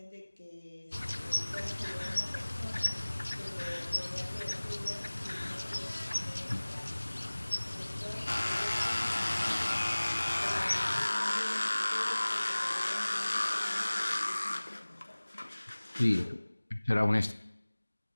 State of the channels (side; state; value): both; inverted; correlation -1.00